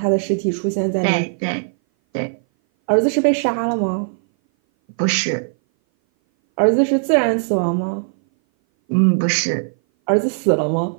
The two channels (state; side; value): silent; left; 59 dB below the other